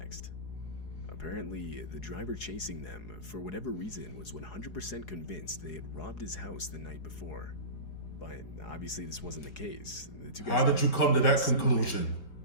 Apparently, the driver chasing them, for whatever reason, was 100% convinced they had robbed his house the night before. But obviously this wasn't the case. The 2 guys. How did you come to that conclusion?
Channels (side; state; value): right; late; 4.8 ms